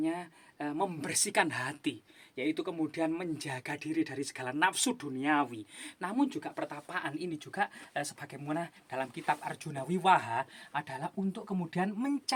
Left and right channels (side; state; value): both; identical; correlation 1.00